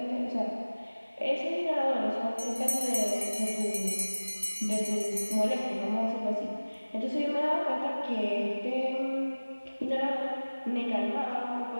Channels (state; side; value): inverted; both; correlation -1.00